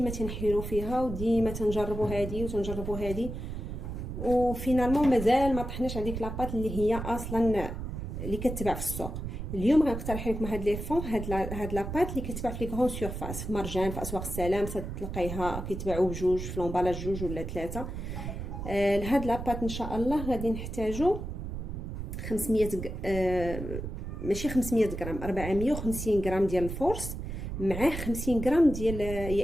تنحيروا فيها وديما تنجربوا هذه وتنجربوا هذه، وفينالمون مازال ما طحناش على ديك لاباط اللي هي اصلا اللي كتباع في السوق. اليوم غنقترح لكم هاد لي فون، هاد لاباط اللي كتباع في لي غران سورفاس، في مرجان، في اسواق السلام، تلقايها كيتباعوا بجوج في لومبالاج جوج ولا ثلاثه. لهاد لاباط ان شاء الله غادي نحتاجو 500 ماشي 500 غرام، 450 غرام ديال الفورس، معاه 50 غرام ديال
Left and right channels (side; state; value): right; noise; rumble, 6 dB below the sound